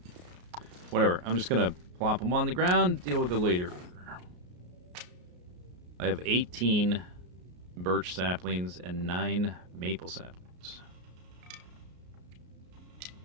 Whatever. I'm just going to plop them on the ground, deal with it later. I have 18 birch saplings and 9 maple saplings.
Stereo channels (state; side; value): late; left; 33 ms